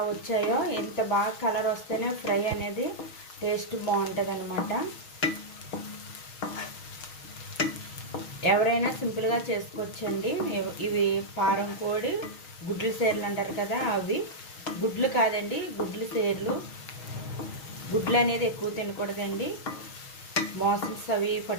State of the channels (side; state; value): right; late; 6.3 ms